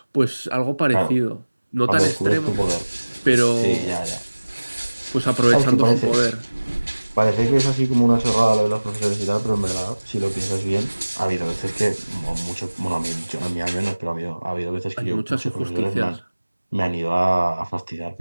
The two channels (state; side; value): inverted; both; correlation -1.00